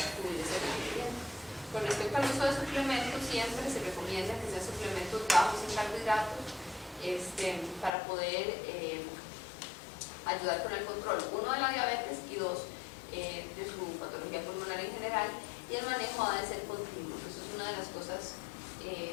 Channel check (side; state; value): right; drops out; at 7.9 s